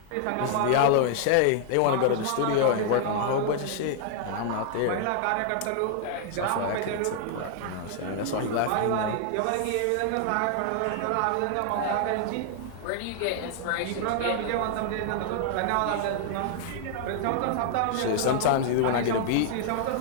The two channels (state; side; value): different; both; correlation 0.00